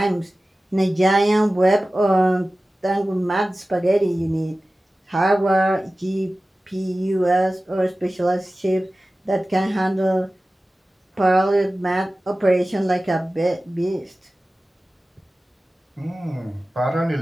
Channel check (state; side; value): normal; both; correlation 0.96